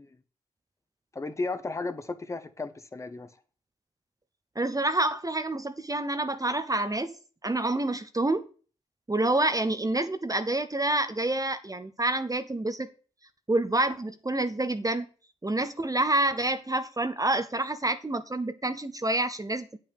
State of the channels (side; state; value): both; normal; correlation 0.42